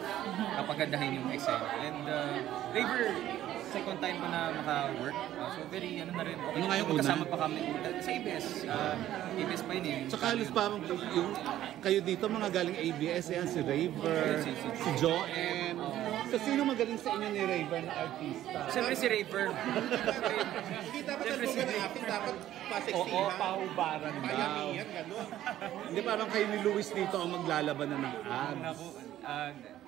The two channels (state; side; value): quieter; left; 12.9 dB